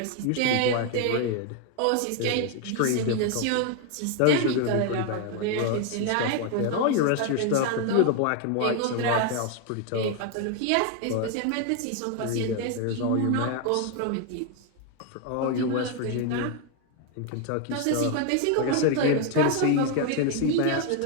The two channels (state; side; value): different; both; correlation 0.01